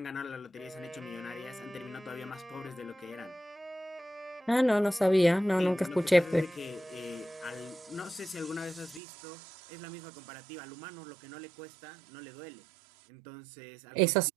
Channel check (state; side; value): drops out; left; at 9.0 s